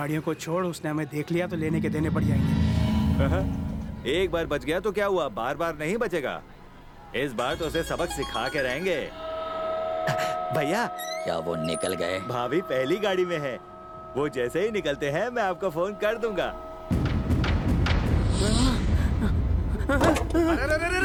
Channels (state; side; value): identical; both; correlation 1.00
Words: को छोड़, उसने हमें देख लिया तो लेने के देने पड़ जाएंगे। एक बार बच गया तो क्या हुआ, बार बार नहीं बचेगा। इस बार तो उसे सबक सिखा के रहेंगे। भैया, क्या वो निकल गए? भाभी पहली गाड़ी में है। वो जैसे ही निकलते हैं मैं आपको फोन कर दूंगा। अरे रे रे